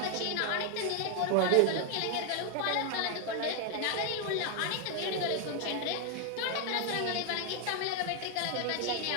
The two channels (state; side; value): different; both; correlation 0.01